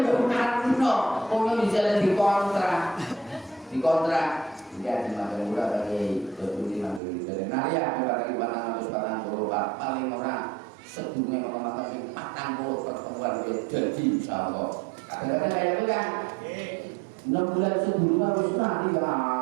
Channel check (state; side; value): drops out; left; at 7.0 s